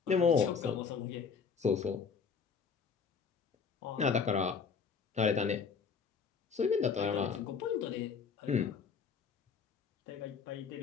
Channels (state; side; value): quieter; right; 5.9 dB